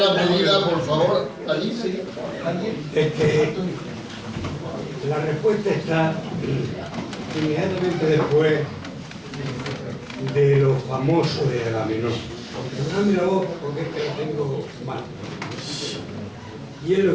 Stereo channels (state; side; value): identical; both; correlation 1.00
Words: pedida, por favor. Alicia. La respuesta está inmediatamente después de lo famoso de Agamenón. No mira vos porque es que lo tengo mal. Y es lo